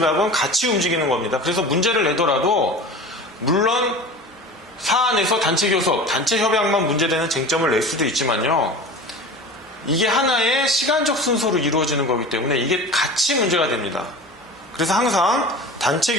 같이 움직이는 겁니다. 그래서 문제를 내더라도 물론 사안에서 단체 교섭, 단체 협약만 문제되는 쟁점을 낼 수도 있지만요. 이게 하나의 시간적 순서로 이루어지는 거기 때문에 이게 같이 문제가 됩니다. 그래서 항상 단체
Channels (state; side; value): normal; both; correlation 0.35